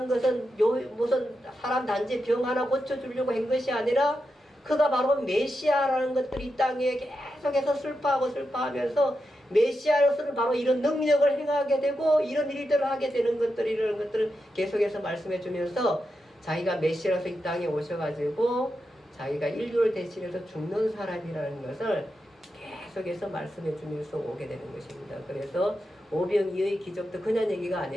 것은 무슨 사람 단지 병 하나 고쳐주려고 한 것이 아니라 그가 바로 메시아라는 것들이 이 땅에 계속해서 슬퍼하면서 메시아로서는 바로 이런 능력을 행하게 되고 이런 일들을 하게 되는 이런 것들을 계속해서 말씀해 주면서 자기가 메시아로서 이 땅에 오셔가지고 자기가 인류를 대신해서 죽는 사람이라는 것을 계속해서 말씀해 주면서 오게 되는 것입니다. 그래서 오병이어의 기적도 그냥 얘기가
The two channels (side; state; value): both; normal; correlation 0.87